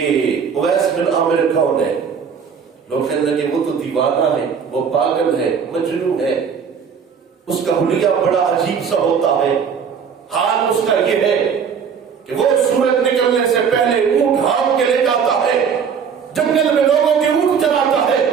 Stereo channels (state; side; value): quieter; left; 6.7 dB